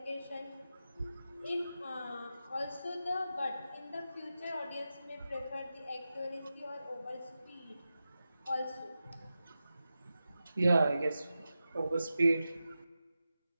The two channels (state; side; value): inverted; both; correlation -0.92